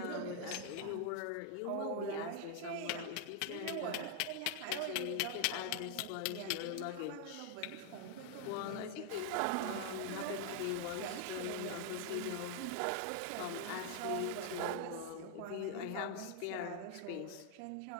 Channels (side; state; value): both; different; correlation 0.00